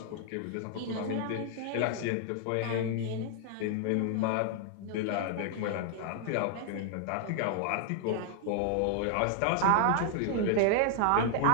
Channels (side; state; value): both; different; correlation 0.00